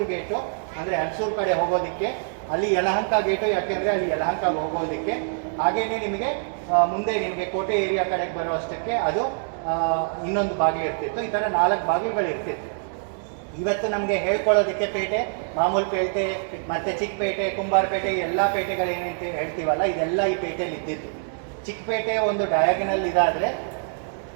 ಗೇಟು, ಅಂದರೆ ಅಲ್ಸೂರ್ ಕಡೆ ಹೋಗೋದಕ್ಕೆ ಅಲ್ಲಿ ಯಲಹಂಕ ಗೇಟು, ಯಾಕೆಂದರೆ ಅಲ್ಲಿ ಯಲಹಂಕಗೆ ಹೋಗೋದಕ್ಕೆ. ಹಾಗೆಯೇ ನಿಮಗೆ ಮುಂದೆ ನಿಮಗೆ ಕೋಟೆ ಏರಿಯಾ ಕಡೆಗೆ ಬರೋ ಅಷ್ಟಕ್ಕೆ ಅದು ಇನ್ನೊಂದು ಬಾಗಿಲು ಇರ್ತಿತ್ತು. ಈ ಥರ 4 ಬಾಗಿಲುಗಳು ಇರ್ತಿತ್ತು. ಇವತ್ತು ನಮಗೆ ಹೇಳ್ಕೊಳ್ಳೋದಕ್ಕೆ ಪೇಟೆ, ಮಾಮೂಲು ಪೇಟೆ, ಮತ್ತು ಚಿಕ್ಕಪೇಟೆ, ಕುಂಬಾರಪೇಟೆ, ಎಲ್ಲ ಪೇಟೆಗಳೇನಂತ ಹೇಳ್ತೀವಲ್ಲ, ಇದೆಲ್ಲ ಈ ಪೇಟೆಯಲ್ಲಿ ಇದ್ದಿತ್ತು. ಚಿಕ್ಕಪೇಟೆ ಒಂದು ಡಯಾಗನಲ್ ಇದಾದರೆ,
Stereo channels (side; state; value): left; silent; digital silence